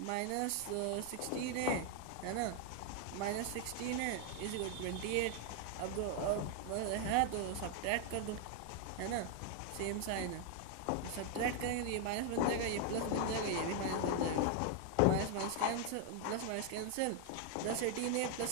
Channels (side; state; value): both; different; correlation 0.01